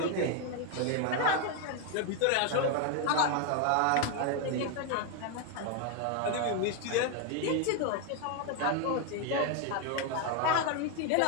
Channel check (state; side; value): different; both; correlation 0.01